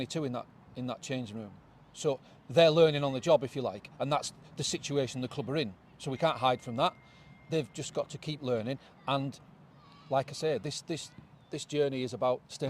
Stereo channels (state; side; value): identical; both; correlation 1.00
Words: in that changing room. So they're learning on the job, if you like, and that's the situation the club are in. So we can't hide from that. They've just got to keep learning. And like I say, this journey is about